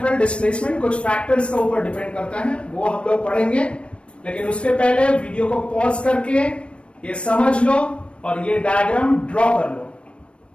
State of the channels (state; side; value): late; right; 0.059 ms